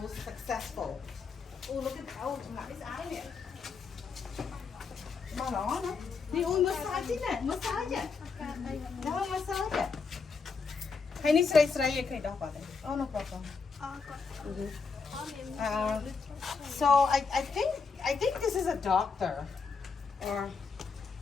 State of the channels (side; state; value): right; quieter; 5.0 dB